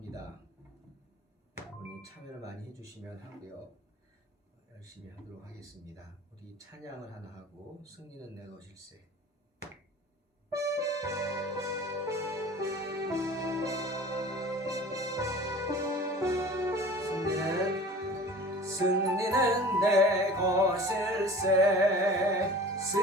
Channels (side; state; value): both; normal; correlation 0.42